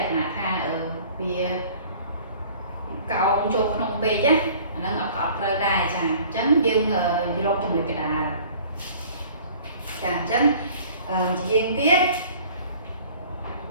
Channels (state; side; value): inverted; both; correlation -0.49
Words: ក្ខណៈថាវាកោងចូលក្នុងពេកណាអាហ្នឹងអត់ត្រូវដែរចាអញ្ចឹងយើងរកចំណុចកណ្ដាលចាអញ្ចឹងជាយើងទៀត